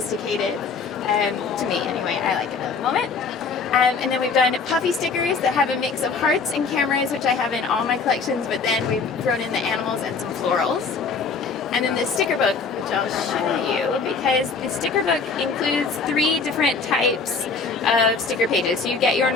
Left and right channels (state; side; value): quieter; right; 4.8 dB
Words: to me anyway. I like it at the moment. And then we've done puffy stickers that have a mix of hearts and cameras, which I have in all my collections, but then we've thrown in the animals and some florals. And then the sticker book, which I'll show you, because the sticker book includes 3 different types of sticker pages. So you get your